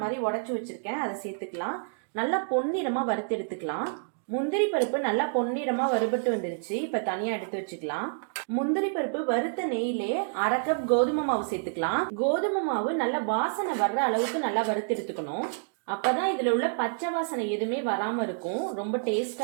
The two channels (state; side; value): silent; left; digital silence